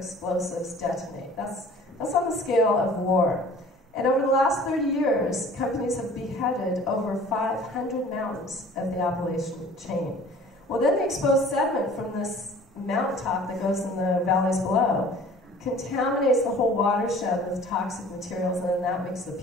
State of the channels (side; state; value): both; normal; correlation 0.48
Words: detonate. That's on the scale of war. And over the last 30 years, companies have beheaded over 500 mountains of the Appalachian chain. Well, then the exposed sediment from this mountaintop that goes in the valleys below contaminates the whole watershed with toxic materials, and then that makes the